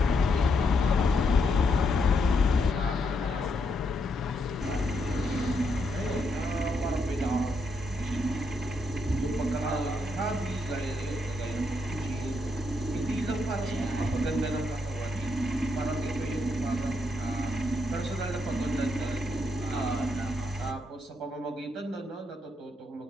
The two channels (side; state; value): both; normal; correlation 0.79